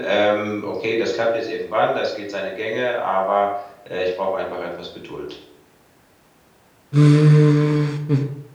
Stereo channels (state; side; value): identical; both; correlation 1.00